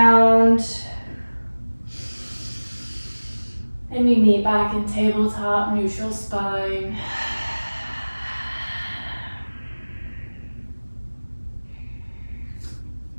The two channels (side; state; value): both; inverted; correlation -1.00